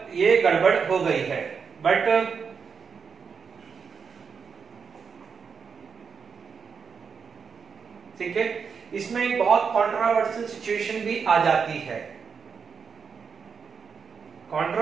ये गड़बड़ हो गई है, बट ठीक है, इसमें एक बहुत कंट्रोवर्शियल सिचुएशन भी आ जाती है।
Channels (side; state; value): left; quieter; 6.0 dB